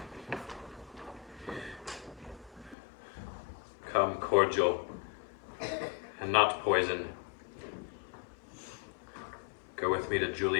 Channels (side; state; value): right; drops out; at 2.8 s